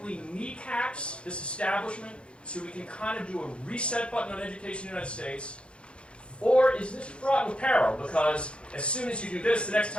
kneecaps this establishment so we can kind of do a reset button on education in the United States? Or is this fraught with peril? Because as soon as you do this, the next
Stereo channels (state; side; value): late; right; 0.057 ms